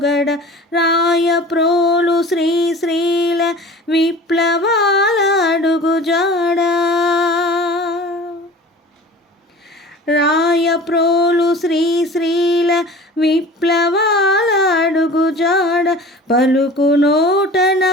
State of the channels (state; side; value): normal; both; correlation 0.41